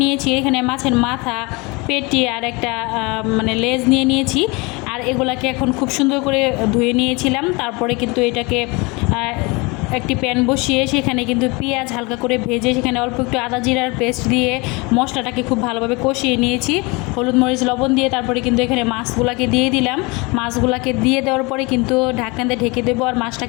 নিয়েছি। এখানে মাছের মাথা, পেটি আর একটা মানে লেজ নিয়ে নিয়েছি। আর এগুলাকে এখন খুব সুন্দর করে ধুয়ে নিয়েছিলাম। তারপরে কিন্তু এটাকে একটি প্যান বসিয়ে সেখানে কিন্তু পেঁয়াজ হালকা করে ভেজে সেখানে অল্প একটু আদা জিরার পেস্ট দিয়ে মশলাটাকে খুব ভালোভাবে কষিয়ে নিয়েছি। হলুদ মরিচ লবণ দিয়ে তারপরে কিন্তু এখানে মাছগুলাকে দিয়ে দিলাম। মাছগুলাকে দিয়ে দেওয়ার পরে কিন্তু ঢাকনা দিয়ে ঢেকে দেবো আর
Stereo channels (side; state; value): right; quieter; 26.8 dB